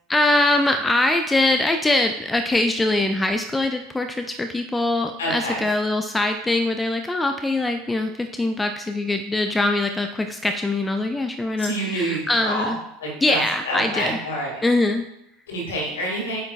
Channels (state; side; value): normal; both; correlation 0.74